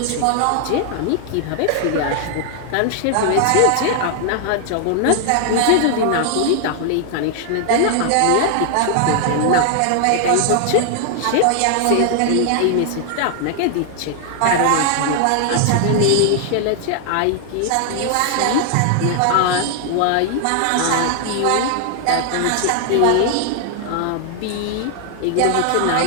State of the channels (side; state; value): both; different; correlation 0.00